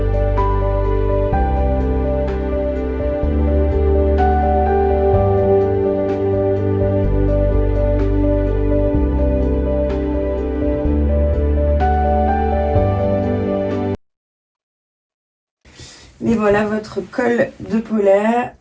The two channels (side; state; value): both; identical; correlation 1.00